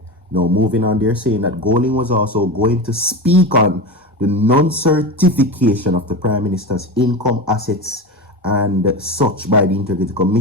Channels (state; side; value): normal; both; correlation 0.23